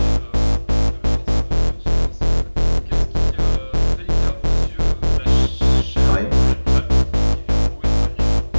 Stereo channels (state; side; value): inverted; both; correlation -1.00